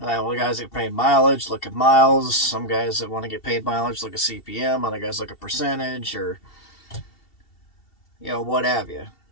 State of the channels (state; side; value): late; right; 2.7 ms